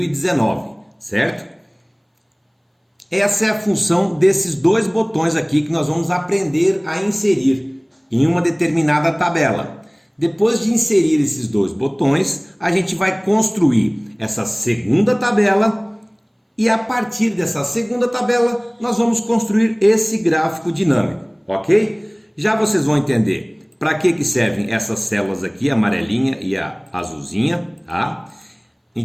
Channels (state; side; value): identical; both; correlation 1.00